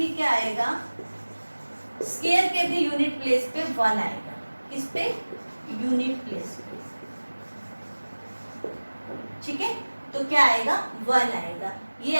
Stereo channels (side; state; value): both; inverted; correlation -1.00